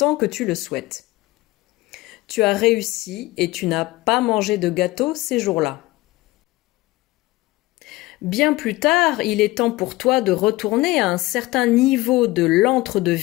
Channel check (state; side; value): quieter; right; 19.6 dB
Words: que tu le souhaites. Tu as réussi et tu n'as pas mangé de gâteau ces jours-là. Bien plus tard, il est temps pour toi de retourner à un certain niveau de